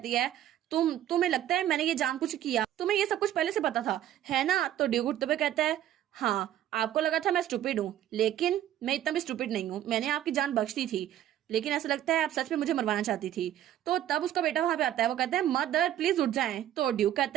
है तुम्हें लगता है मैंने ये जानबूझ किया, तुम्हें ये सब कुछ पहले से पता था है ना? तो ड्यूक उठते हुए कहता है हाँ आपको लगा था मैं स्टूपिड हूँ लेकिन मैं इतना भी स्टूपिड नहीं हूँ, मैंने आपकी जान बख्श दी थी लेकिन ऐसा लगता है आप सच में मुझे मरवाना चाहती थी। तो तब उसका बेटा वहां पे आता है। वो कहता है मदर प्लीज उठ जाएं। तो ड्यूक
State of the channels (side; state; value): left; quieter; 12.0 dB